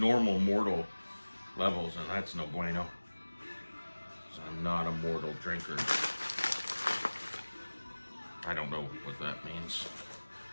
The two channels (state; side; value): inverted; both; correlation -1.00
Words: mortal levels, and that's no bueno. So I'm not a mortal drinker. I don't know what that means.